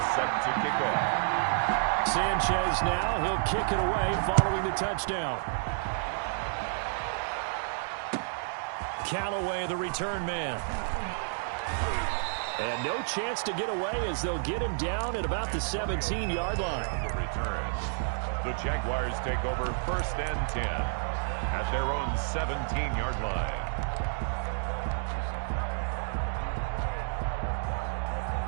set to kick off. Sanchez now, he'll kick it away following the touchdown. Callaway, the return man. And no chance to get away as they'll get him down at about the 17-yard line. On the return, the Jaguars take over 1st and 10 at their own 17-yard line.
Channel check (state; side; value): silent; left; digital silence